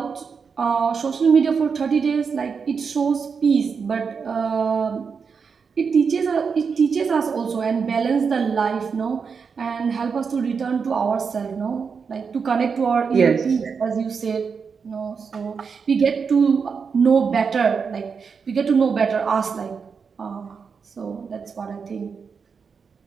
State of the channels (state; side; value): quieter; left; 5.8 dB